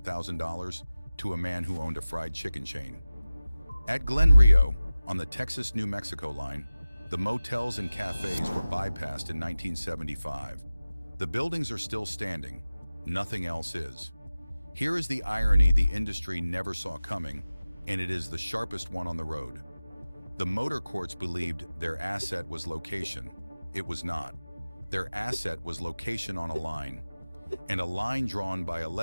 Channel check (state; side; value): inverted; both; correlation -0.96